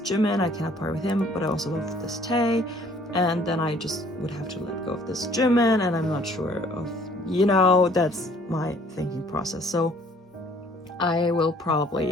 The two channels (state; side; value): normal; both; correlation 0.57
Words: Jimin, I cannot part with him, but I also love this Tae. And then I just would have to let go of this Jimin, and I'm not sure of you know, that's my thinking process. So I will